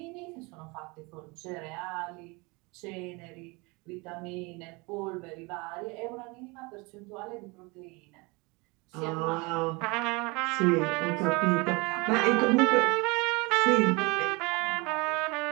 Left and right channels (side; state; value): left; quieter; 26.8 dB